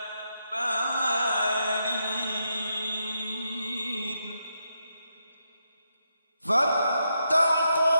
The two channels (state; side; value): inverted; both; correlation -0.82